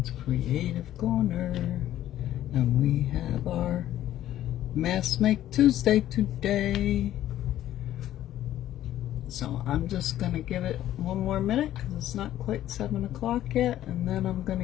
Creative Corner. And we have our Mask Make Tuesday today. So I'm just going to give it one more minute because it's not quite 7 o'clock yet. And then I'm going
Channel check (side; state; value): right; quieter; 12.8 dB